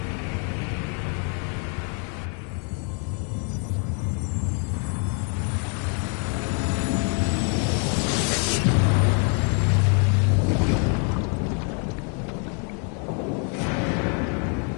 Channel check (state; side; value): quieter; right; 39.5 dB